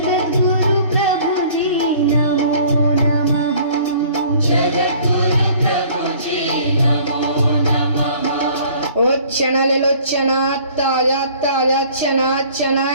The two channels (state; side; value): inverted; both; correlation -0.52